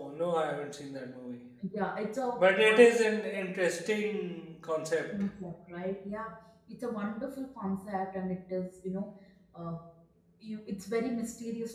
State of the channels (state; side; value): identical; both; correlation 1.00